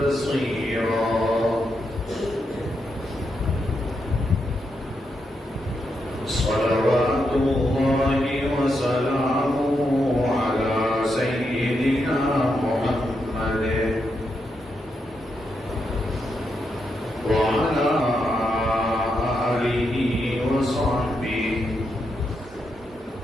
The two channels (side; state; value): both; normal; correlation 0.83